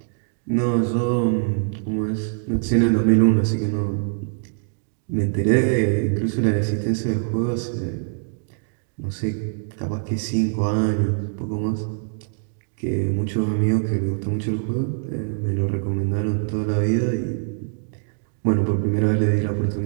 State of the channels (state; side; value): silent; left; digital silence